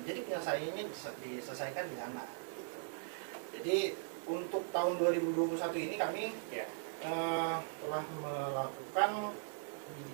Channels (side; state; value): left; silent; digital silence